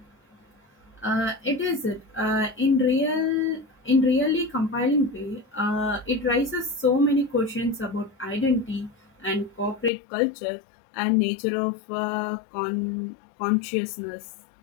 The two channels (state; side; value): drops out; right; at 9.9 s